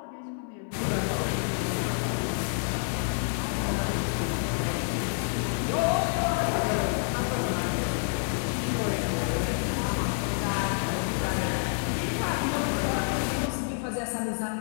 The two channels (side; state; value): right; silent; digital silence